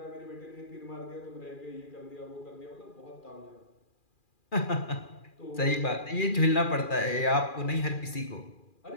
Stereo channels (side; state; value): right; late; 2.4 ms